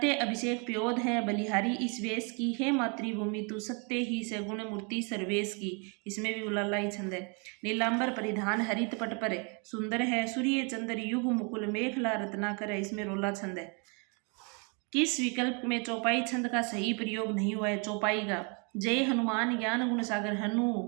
अभिषेक प्योद है बलिहारी इस वेश की, हे मातृभूमि तू सत्य ही से गुण मूर्ति सर्वेश की, इसमें भी उलाला ही छंद है। नीलांबर परिधान हरित पट पर सुंदर है, सूर्य चंद्र युग मुकुल मेखला रत्नाकर है, इसमें रोला छंद है। किस विकल्प में चौपाई छंद का सही प्रयोग नहीं हुआ है? चौपाई का, जय हनुमान ज्ञान गुण सागर, हनु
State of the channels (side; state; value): left; quieter; 34.8 dB